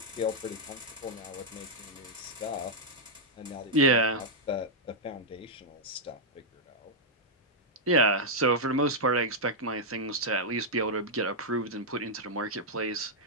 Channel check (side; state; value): both; normal; correlation -0.06